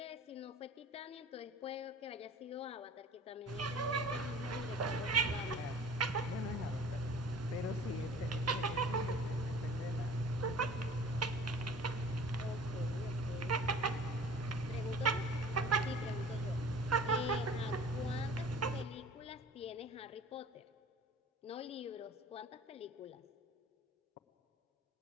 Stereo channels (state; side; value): normal; both; correlation 0.45